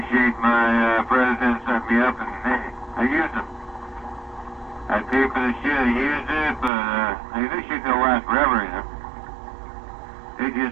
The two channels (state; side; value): drops out; left; at 6.7 s